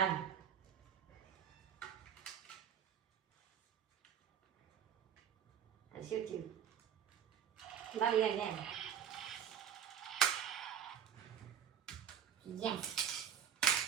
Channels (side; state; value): left; quieter; 8.8 dB